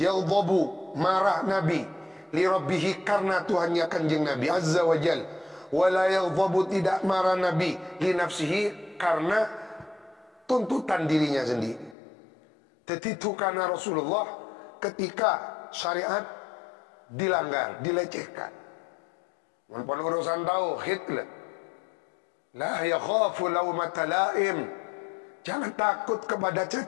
marah Nabi li rabbihi, karena Tuhannya kanjeng Nabi azza wa jal. Wala yaldabu, tidak marah Nabi li nafsihi, karena tuntutan dirinya sendiri. Tetitu karena Rasulullah ketika syariat dilanggar, dilecehkan. Walaupun urusan tauhid lah. La yakhafu laumata laim. Jangan takut kepada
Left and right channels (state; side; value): drops out; right; at 12.0 s